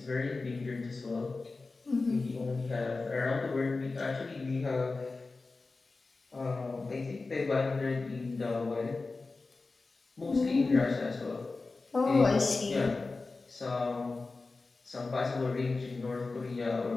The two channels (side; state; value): right; quieter; 3.7 dB